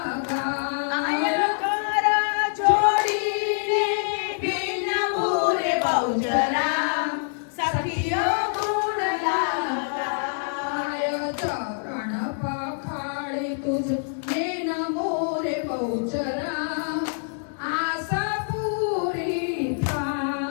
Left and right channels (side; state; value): right; silent; digital silence